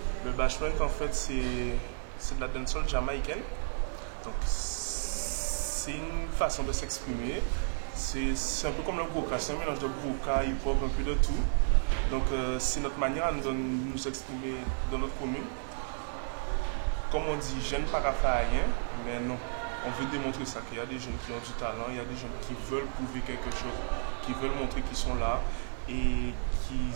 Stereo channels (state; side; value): silent; left; digital silence